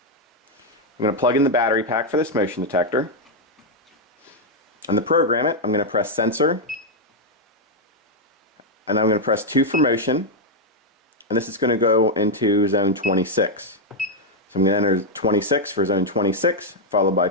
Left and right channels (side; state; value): both; normal; correlation -0.01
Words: I'm going to plug in the battery pack for this motion detector. And to program it, I'm going to press sensor, and I'm going to press 2 for motion, and this is going to go into zone 26. So I'm going to enter 26 for zone 26, followed by